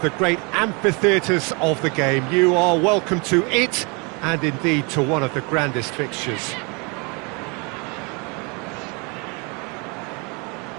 great amphitheatres of the game. You are welcome to it, and indeed to one of the grandest fixtures.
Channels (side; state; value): left; quieter; 31.3 dB